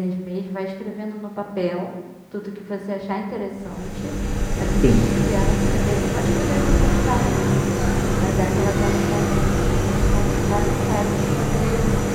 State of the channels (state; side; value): identical; both; correlation 1.00